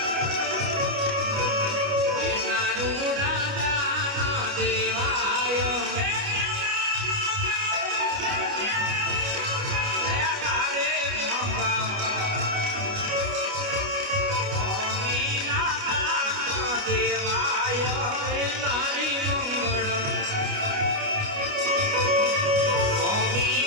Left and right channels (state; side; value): late; left; 29 ms